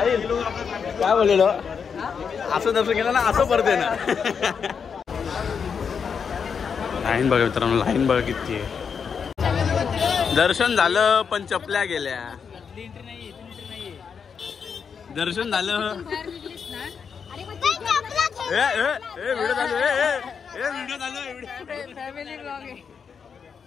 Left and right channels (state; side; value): quieter; right; 6.4 dB